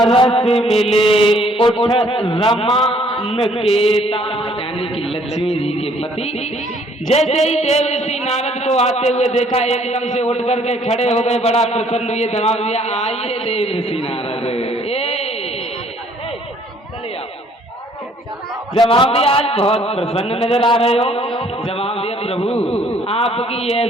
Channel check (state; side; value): normal; both; correlation 0.61